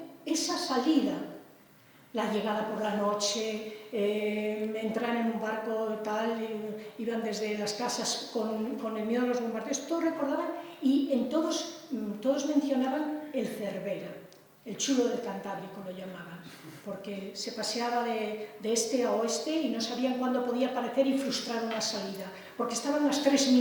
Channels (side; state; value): both; identical; correlation 1.00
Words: esa salida, la llegada por la noche, entrar en un barco tal, iban desde las casas con el miedo a los bombardeos, todos recordaban y en todos mencionaban el Cervera, el chulo del Cantábrico lo llamaban, porque se paseaba de este a oeste y no sabían cuándo podía aparecer y frustrar una salida, porque estaban las 3